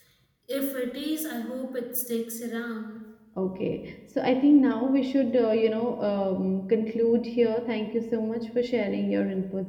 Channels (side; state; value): both; identical; correlation 1.00